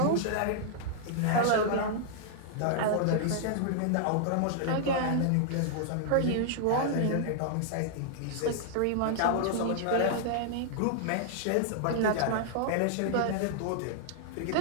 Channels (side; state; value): both; different; correlation -0.01